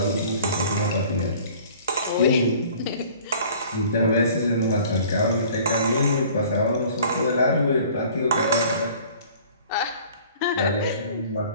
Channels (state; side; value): inverted; both; correlation -0.50